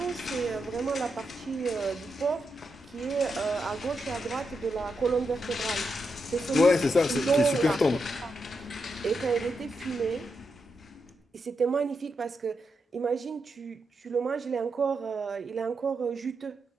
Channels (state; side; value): normal; both; correlation 0.85